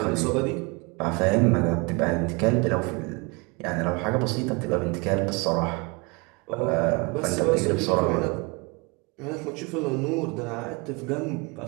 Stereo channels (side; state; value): left; quieter; 28.6 dB